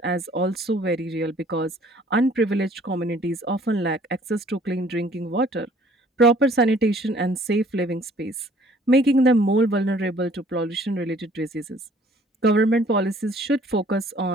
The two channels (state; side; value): normal; both; correlation 0.57